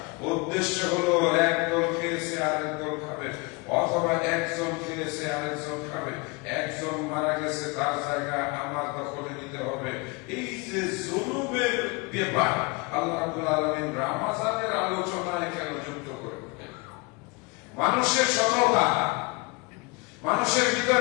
উদ্দেশ্য হলো এক দল খেয়েছে আরেক দল খাবে, অথবা একজন খেয়েছে আরেকজন খাবে, একজন মারা গেছে তার জায়গা আমার দখলে নিতে হবে। এই যে জুলুমের ব্যাপার আল্লাহ রাব্বুল আলামিন রমজানের আলোচনায় কেন যুক্ত করে? মানুষের সততা, মানুষের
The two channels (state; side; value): quieter; right; 27.9 dB